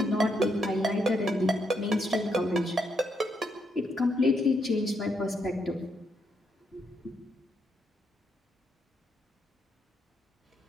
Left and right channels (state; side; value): normal; both; correlation 0.78